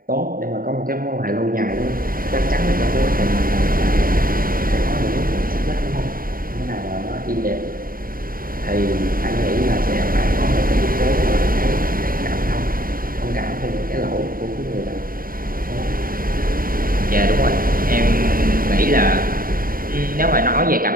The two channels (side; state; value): left; late; 0.41 ms